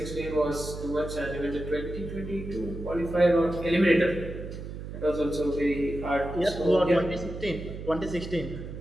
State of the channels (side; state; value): right; noise; hum, 9 dB below the sound